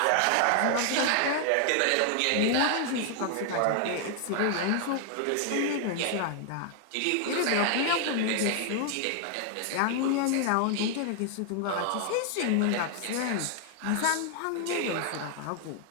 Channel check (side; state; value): both; different; correlation 0.00